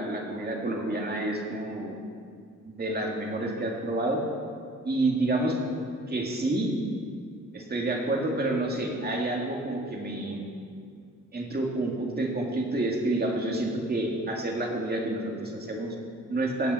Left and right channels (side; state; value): both; normal; correlation 0.50